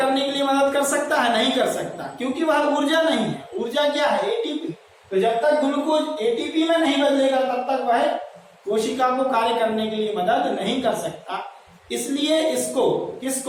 के लिए मदद कर सकता है, नहीं कर सकता, क्योंकि वह ऊर्जा नहीं है। ऊर्जा क्या है, एटीपी। तो जब तक ग्लूकोज एटीपी में नहीं बदलेगा तब तक वह कोशिका को कार्य करने के लिए मदद नहीं कर सकता। इसलिए इसको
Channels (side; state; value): both; identical; correlation 1.00